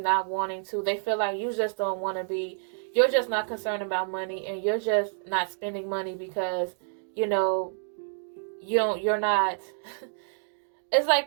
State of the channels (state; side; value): silent; left; digital silence